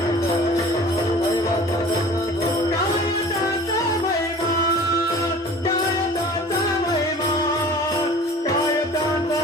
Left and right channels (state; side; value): normal; both; correlation 0.44